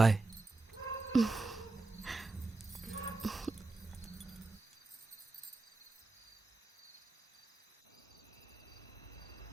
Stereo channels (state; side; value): quieter; left; 3.3 dB